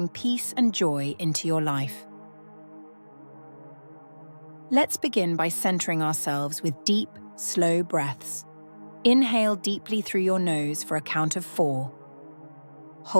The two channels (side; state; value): both; inverted; correlation -1.00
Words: peace and joy into your life. Let's begin by centering ourselves with deep, slow breaths. Inhale deeply through your nose for a count of 4.